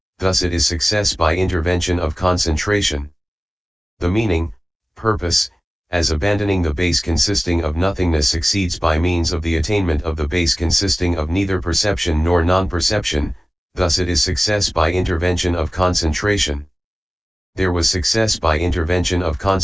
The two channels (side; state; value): both; normal; correlation 0.97